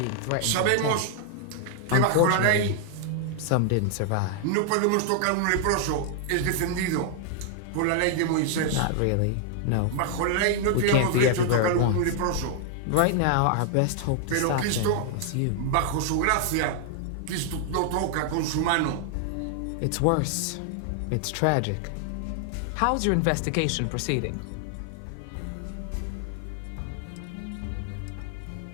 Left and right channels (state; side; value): different; both; correlation 0.00